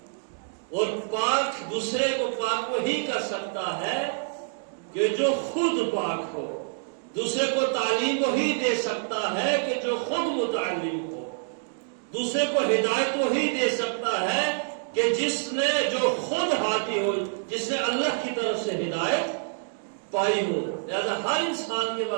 اور پاک دوسرے کو پاک وہی کر سکتا ہے کہ جو خود پاک ہو. دوسرے کو تعلیم وہی دے سکتا ہے کہ جو خود متعلم ہو. دوسرے کو ہدایت وہی دے سکتا ہے کہ جس نے جو خود ہادی ہو، جس نے اللہ کی طرف سے ہدایت پائی ہو. لہذا ہر انسان کے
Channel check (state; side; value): silent; left; digital silence